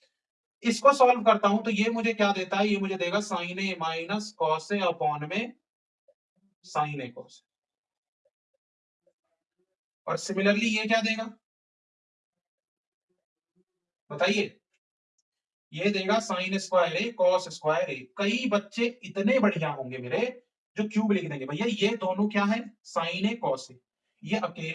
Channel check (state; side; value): identical; both; correlation 1.00